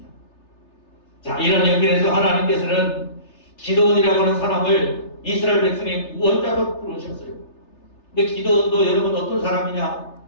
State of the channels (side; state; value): right; late; 3.3 ms